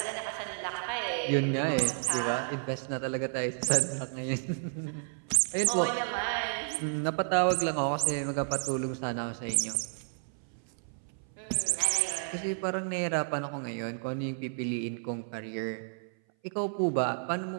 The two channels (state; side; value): silent; left; 57 dB below the other